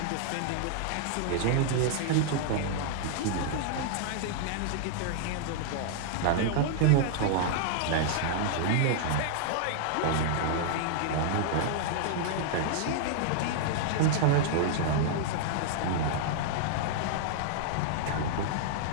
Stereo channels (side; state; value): both; different; correlation -0.01